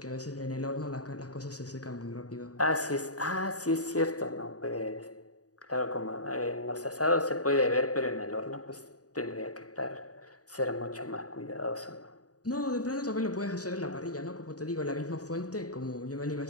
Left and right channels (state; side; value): late; right; 0.67 ms